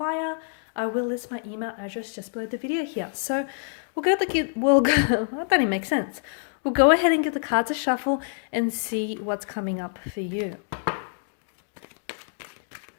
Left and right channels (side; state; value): right; silent; digital silence